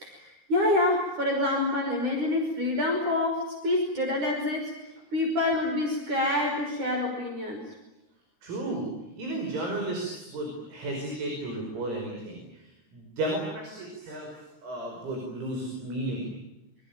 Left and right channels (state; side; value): late; left; 13 ms